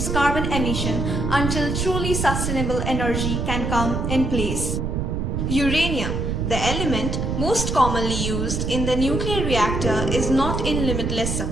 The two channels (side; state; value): right; noise; rumble, 1 dB below the sound